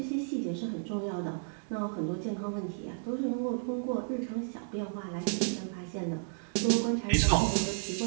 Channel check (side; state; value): left; silent; 56 dB below the other